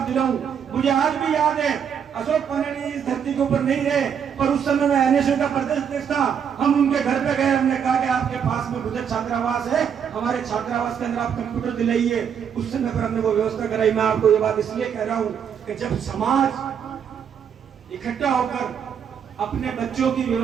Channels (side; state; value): left; quieter; 7.8 dB